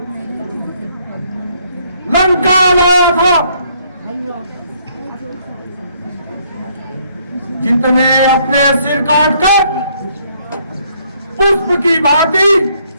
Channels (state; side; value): inverted; both; correlation -0.68